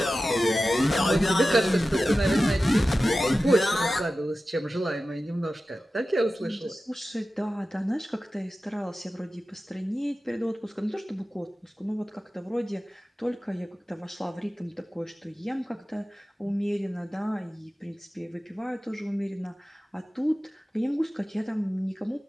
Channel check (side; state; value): both; normal; correlation 0.94